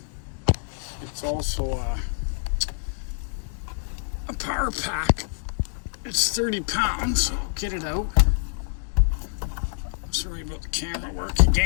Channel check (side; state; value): right; silent; digital silence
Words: a power pack. It's 30 pounds. So get it out. Sorry about the camera work